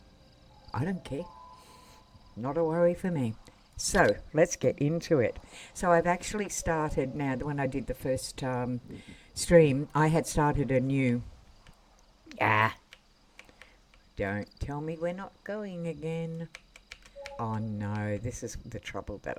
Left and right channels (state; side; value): identical; both; correlation 1.00